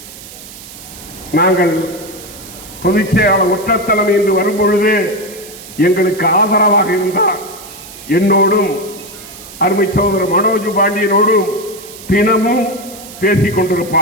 நாங்கள் பொதுச் செயலாளர் ஒற்றத்தலைமை என்று வரும்பொழுது எங்களுக்கு ஆதரவாக இருந்தார். என்னோடும் அருமை சகோதரர் மனோஜ் பாண்டியனோடும் தினமும் பேசிக்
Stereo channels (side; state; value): right; noise; hiss, 16 dB below the sound